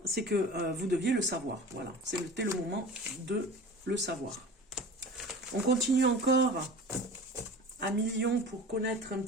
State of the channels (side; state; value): both; normal; correlation 0.37